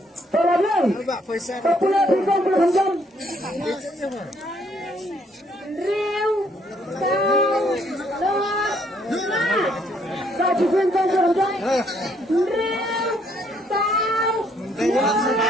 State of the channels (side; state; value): both; normal; correlation 0.68